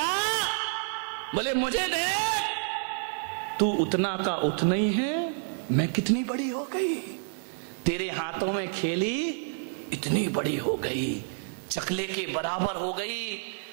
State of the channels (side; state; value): left; silent; 59 dB below the other